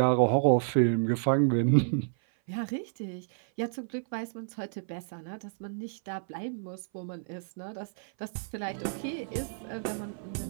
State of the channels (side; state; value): left; silent; 57 dB below the other